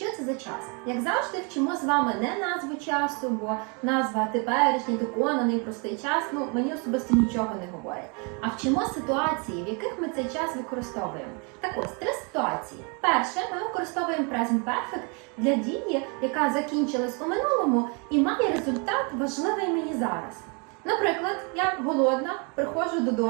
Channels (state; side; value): quieter; left; 34.0 dB